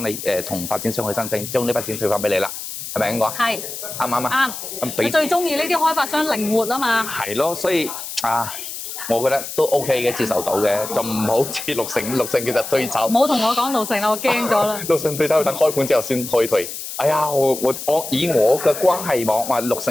你同發展商去申請，將呢筆錢退翻俾你啦，係咪咁講？係，啱唔啱啊？啱。你最中意呢啲開發商靈活啊嘛。係咯，所以我覺得都 OK 嘅，接受到嘅，就唔好似綠城其實退走。唔好同我講綠城啦，我驚咗啦。綠城退走要等開盤之後先可以退。哎呀，我以我嘅關係網話綠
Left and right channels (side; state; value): left; noise; hiss, 8 dB below the sound